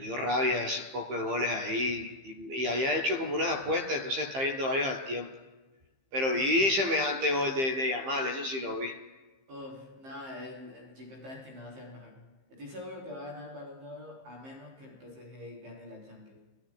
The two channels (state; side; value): late; left; 15 ms